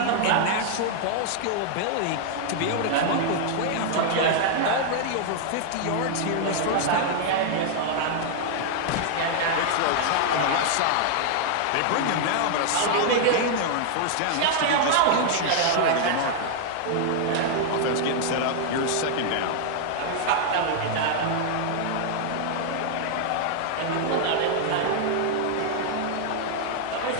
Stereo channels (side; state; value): both; different; correlation 0.00